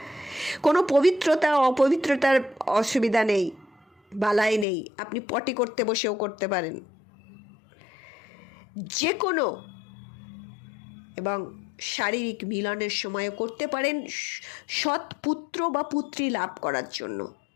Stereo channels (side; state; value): right; drops out; at 4.7 s